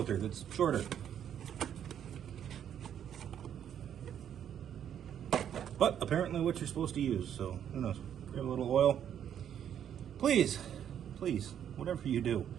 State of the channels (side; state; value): left; quieter; 9.4 dB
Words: that's shorter. But apparently what you're supposed to use, so who knows. Grab a little oil. Please, please, whatever you do,